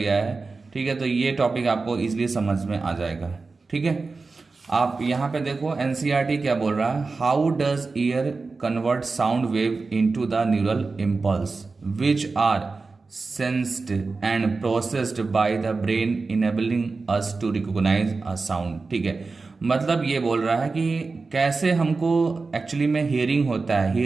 है, ठीक है, तो ये टॉपिक आपको इजीली समझ में आ जाएगा। ठीक है, आप यहाँ पे देखो एनसीईआरटी क्या बोल रहा है, how does ear convert sound wave into the neural impulse which are sensed and processed by the brain enabling us to recognize a sound। ठीक है, मतलब ये बोल रहा है कि कैसे हमको एक्चुअली में हियरिंग होता है।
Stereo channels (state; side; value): quieter; left; 4.0 dB